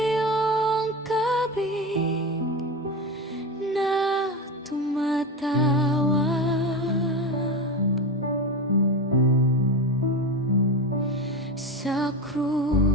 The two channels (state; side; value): normal; both; correlation 0.21